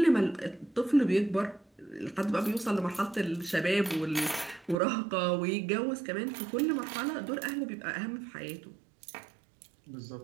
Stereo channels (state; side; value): drops out; left; at 4.8 s